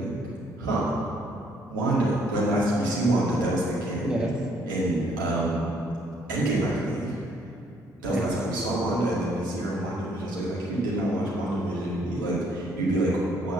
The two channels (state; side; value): normal; both; correlation 0.66